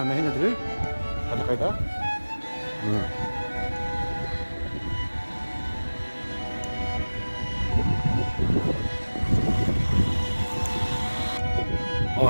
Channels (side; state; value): both; inverted; correlation -1.00